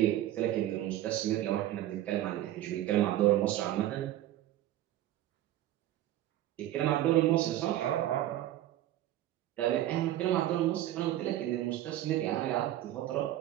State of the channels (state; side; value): quieter; left; 13.5 dB